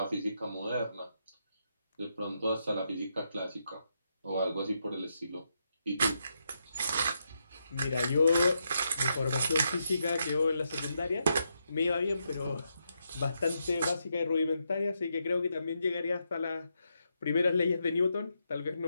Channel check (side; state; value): both; inverted; correlation -0.82